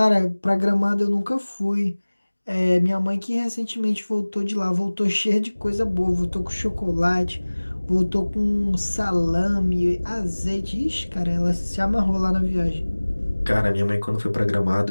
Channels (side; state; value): both; inverted; correlation -1.00